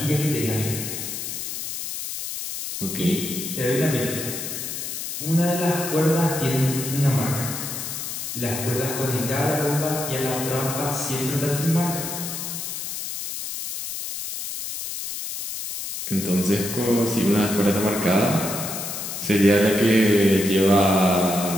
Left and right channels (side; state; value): left; noise; hiss, 6 dB below the sound